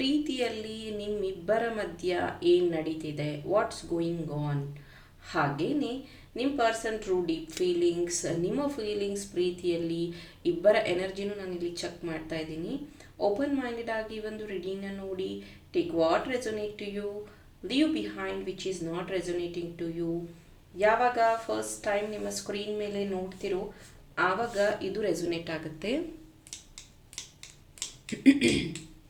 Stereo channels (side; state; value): both; identical; correlation 1.00